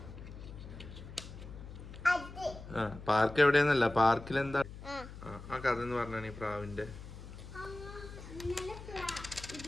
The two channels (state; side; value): noise; left; hum, 13 dB below the sound